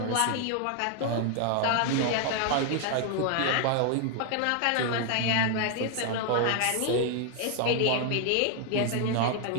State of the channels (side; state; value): both; different; correlation 0.00